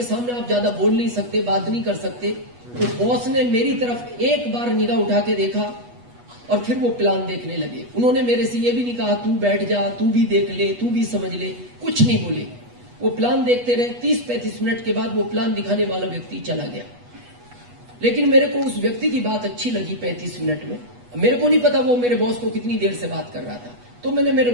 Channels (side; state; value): left; late; 8.2 ms